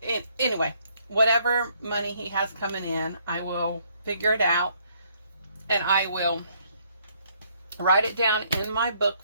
anyway, whatever money he has coming in, I will figure it out and I will write it down in my book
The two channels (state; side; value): inverted; both; correlation -0.68